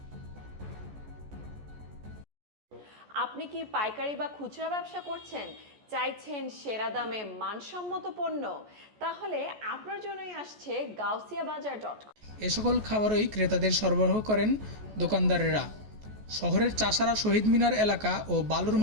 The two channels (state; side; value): late; left; 14 ms